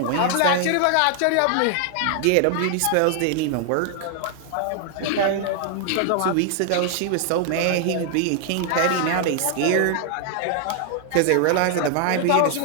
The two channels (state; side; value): different; both; correlation 0.00